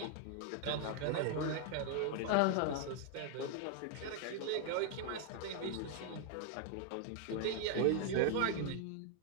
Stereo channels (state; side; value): different; both; correlation 0.00